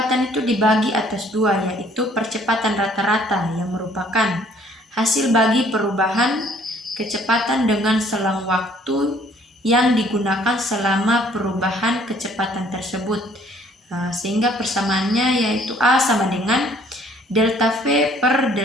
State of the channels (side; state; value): both; normal; correlation 0.60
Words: itu dibagi atas dua, yaitu percepatan rata-rata yang merupakan hasil bagi perubahan kecepatan dengan selang waktu yang digunakan selama perubahan kecepatan tersebut. Sehingga persamaannya yaitu A sama dengan delta V per